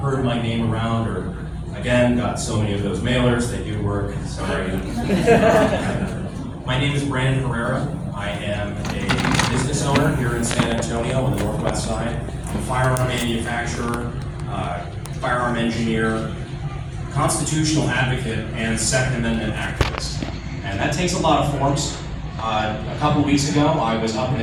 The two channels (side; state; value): both; identical; correlation 1.00